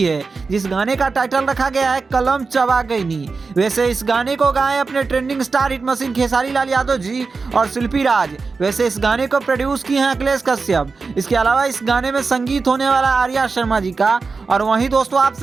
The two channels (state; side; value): quieter; left; 4.4 dB